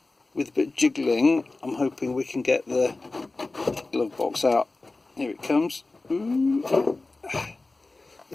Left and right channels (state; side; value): quieter; right; 3.3 dB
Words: with a bit of jiggling, I'm hoping we can get the glove box out. Here it comes. Ooh.